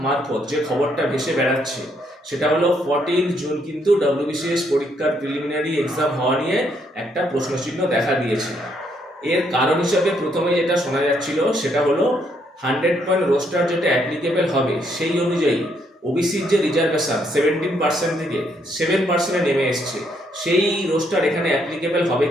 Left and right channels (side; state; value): both; normal; correlation 0.72